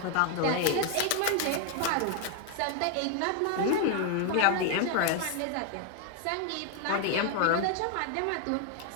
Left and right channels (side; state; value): both; different; correlation 0.00